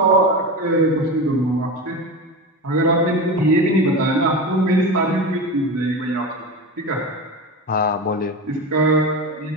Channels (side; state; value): both; normal; correlation 0.24